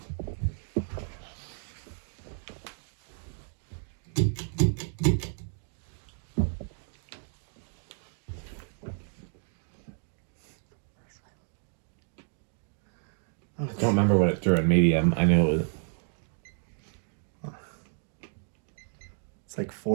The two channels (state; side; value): silent; left; 57 dB below the other